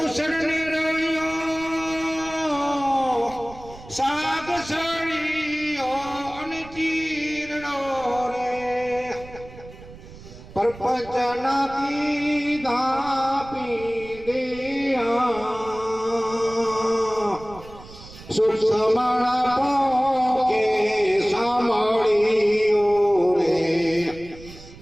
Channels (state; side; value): noise; right; rumble, 18 dB below the sound